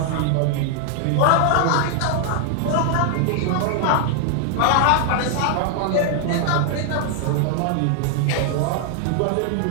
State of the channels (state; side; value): different; both; correlation 0.00